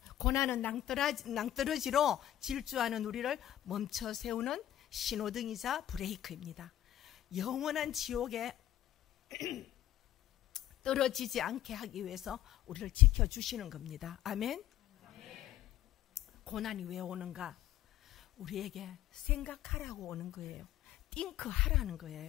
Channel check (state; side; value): quieter; right; 12.7 dB